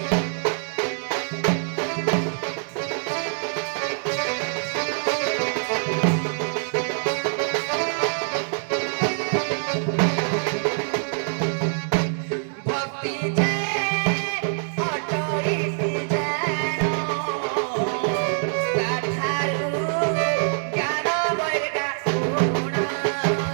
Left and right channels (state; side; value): silent; left; 62 dB below the other